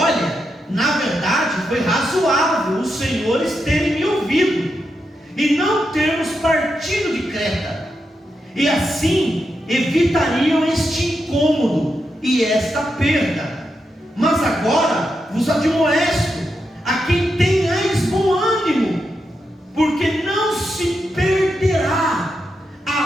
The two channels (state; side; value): normal; both; correlation 0.85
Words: na verdade foi razoável os senhores terem me ouvido e não termos partido de Creta, e assim evitariam este incômodo e esta perda. Mas agora vos admoesto, a quem tenhais bom ânimo, porque não se perderá